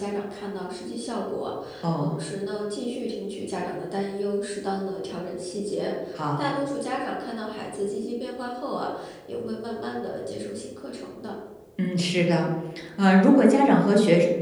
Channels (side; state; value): both; identical; correlation 1.00